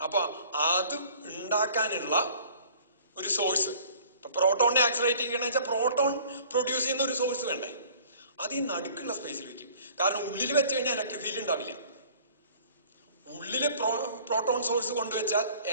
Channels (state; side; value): inverted; both; correlation -0.51